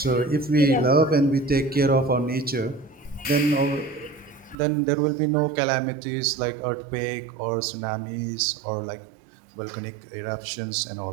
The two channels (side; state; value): left; drops out; at 4.5 s